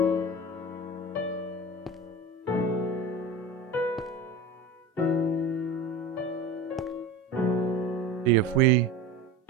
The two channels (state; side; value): normal; both; correlation 0.31